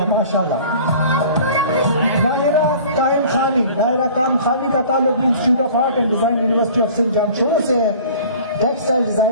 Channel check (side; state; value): both; inverted; correlation -0.46